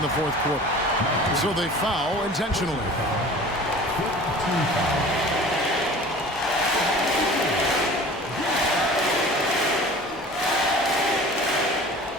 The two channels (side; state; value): both; normal; correlation 0.43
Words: the fourth quarter. So they foul intentionally. Team foul.